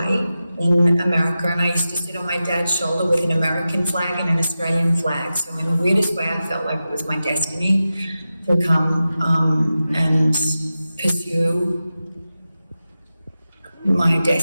in America, and I used to sit on my dad's shoulder with an American flag and an Australian flag. So in the weirdest way, I felt like it was my destiny to come and pursue my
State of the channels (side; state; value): both; inverted; correlation -0.93